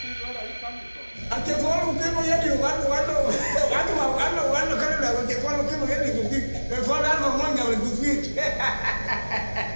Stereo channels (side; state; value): both; inverted; correlation -1.00